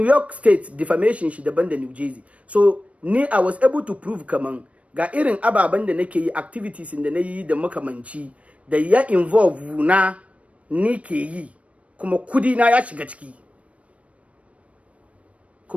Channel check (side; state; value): left; late; 0.064 ms